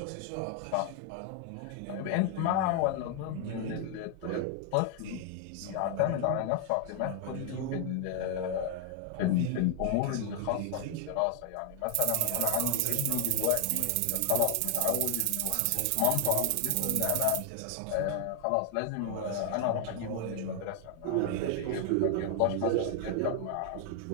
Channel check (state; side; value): different; both; correlation 0.00